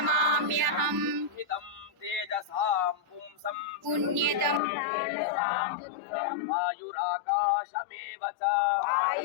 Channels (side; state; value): right; drops out; at 4.6 s